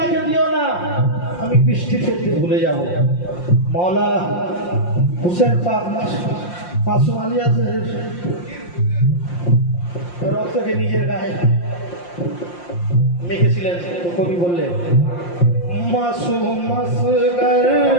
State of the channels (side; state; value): right; late; 5.7 ms